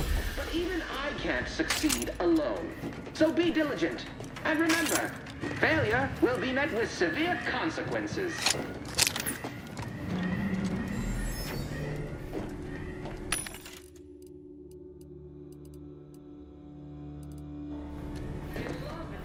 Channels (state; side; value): identical; both; correlation 1.00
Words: And remember, failure will be met with severe consequences.